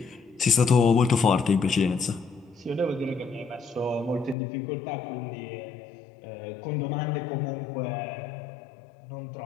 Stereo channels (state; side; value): drops out; right; at 4.4 s